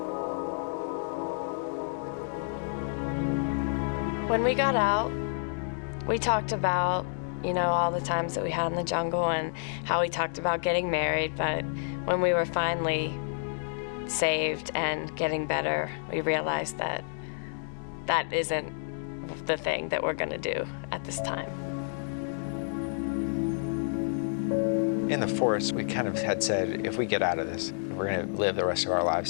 When we got out, we talked about, you know, all the times that we had in the jungle and how we talked about getting married, but when we were finally saved and getting better, we realized that that isn't the thing that we're going to do at this time. In the forest, we kind of had said, if we get out of this, we're going to live the rest of our lives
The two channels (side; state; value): right; silent; digital silence